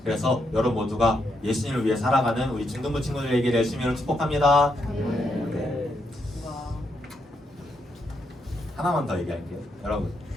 그래서 여러분 모두가 예수님을 위해 살아가는 우리 중등부 친구들에게 열심히 축복합니다. 네. 하나만 더 얘기할게요. 여러분,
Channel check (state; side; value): normal; both; correlation 0.80